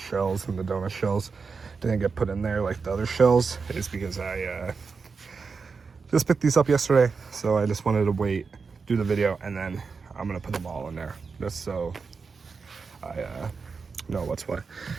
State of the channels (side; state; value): left; quieter; 5.0 dB